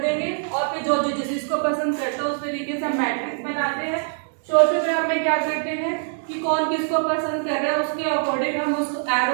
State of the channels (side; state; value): left; silent; digital silence